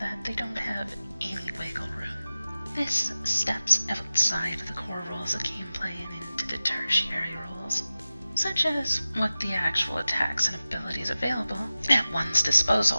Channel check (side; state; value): both; inverted; correlation -0.95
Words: they don't have any wiggle room. This steps outside the core rules of gameplay and into the tertiary rules, such as what the actual attacks and abilities available at one's disposal